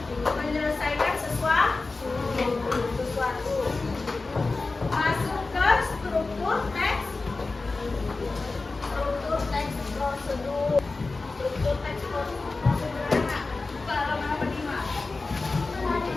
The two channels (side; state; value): right; quieter; 3.7 dB